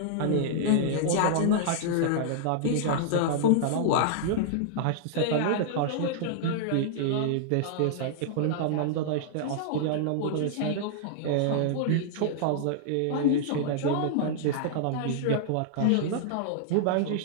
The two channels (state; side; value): different; both; correlation -0.01